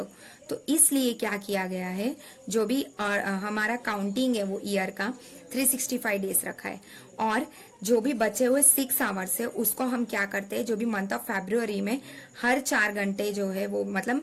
तो इसलिए क्या किया गया है, जो भी हमारा काउंटिंग है वो ईयर का 365 डेज रखा है, और जो भी बचे हुए 6 आवर्स है उसको हम क्या करते हैं, जो भी मंथ ऑफ फरवरी में हर 4 घंटे जो है वो,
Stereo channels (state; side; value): identical; both; correlation 1.00